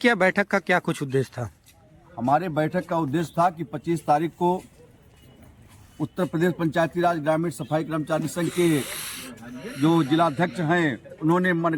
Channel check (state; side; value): identical; both; correlation 1.00